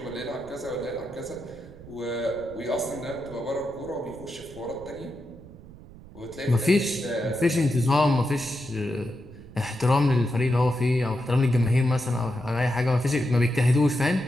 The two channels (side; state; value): right; noise; rumble, 18 dB below the sound